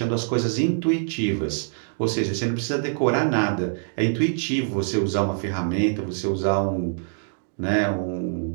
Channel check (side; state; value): left; silent; digital silence